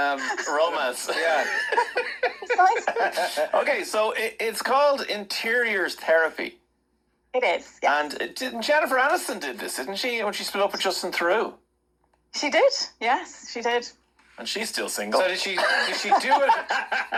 romance. Yeah. Okay, so it's called interiors therapy. It is, yeah. And Jennifer Aniston did this, didn't she, when she split up with Justin Theroux? She did, yes, she did. And she's still single. So did she do it?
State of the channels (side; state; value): both; identical; correlation 1.00